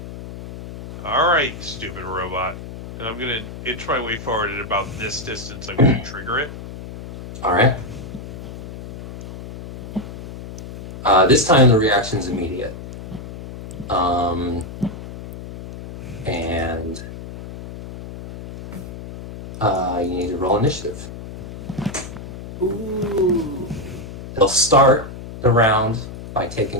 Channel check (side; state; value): left; noise; hum, 11 dB below the sound